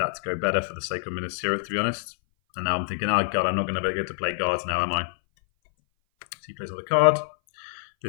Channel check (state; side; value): silent; right; 58 dB below the other